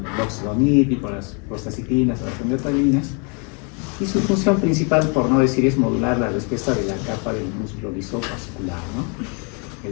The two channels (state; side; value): quieter; right; 36.0 dB